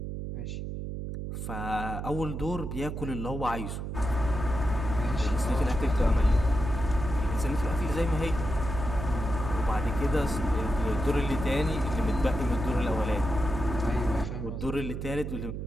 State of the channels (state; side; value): noise; right; hum, 5 dB below the sound